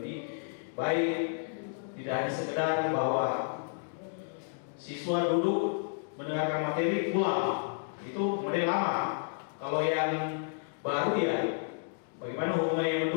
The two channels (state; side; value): silent; right; digital silence